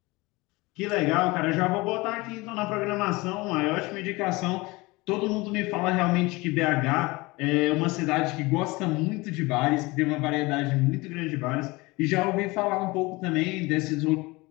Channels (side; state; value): right; quieter; 23.0 dB